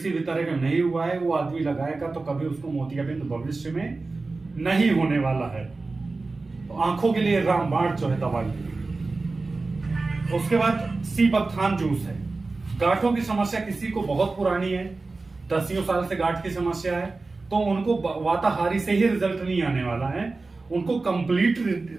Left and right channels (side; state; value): left; quieter; 3.6 dB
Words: भी तरह का नहीं हुआ है, वो आदमी लगाएगा तो कभी उसको मोतियाबिंद भविष्य में नहीं होने वाला है। तो आंखों के लिए रामबाण जो है दवाई। उसके बाद सीबकथान जूस है। गांठों की समस्या किसी को बहुत पुरानी है, 10 साल से गांठ की समस्या है, तो उनको वाताहारी से ही रिजल्ट नहीं आने वाला है, उनको कंप्लीट